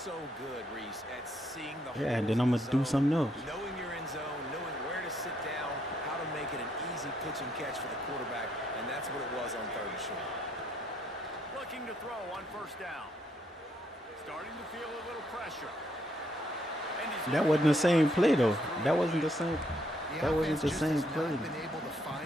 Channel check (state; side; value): normal; both; correlation 0.73